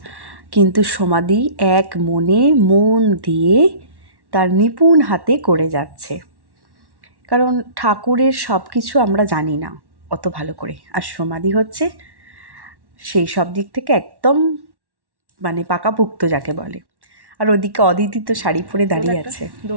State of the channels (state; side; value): late; left; 1.1 ms